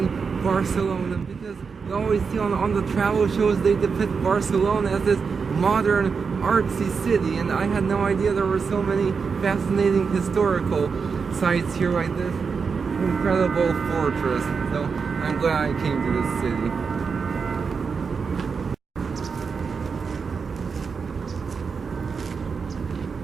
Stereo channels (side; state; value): left; quieter; 5.5 dB